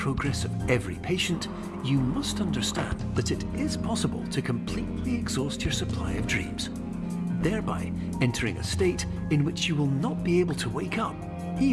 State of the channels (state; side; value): identical; both; correlation 1.00